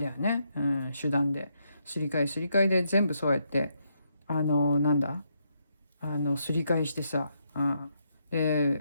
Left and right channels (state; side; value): inverted; both; correlation -0.78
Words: よね、うん、手段ですり替えすり替えで全部そうやってなんだすり替えしてさ、うん、